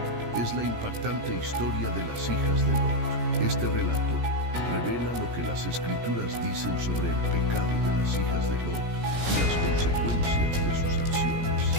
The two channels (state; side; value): late; left; 17 ms